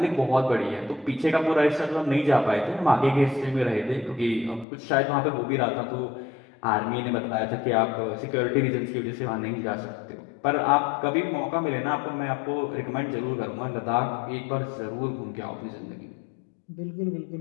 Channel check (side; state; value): right; drops out; at 4.7 s